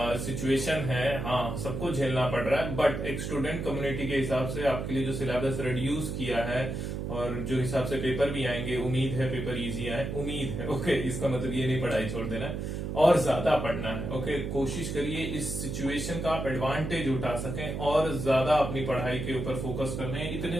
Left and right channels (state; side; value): noise; right; hum, 4 dB below the sound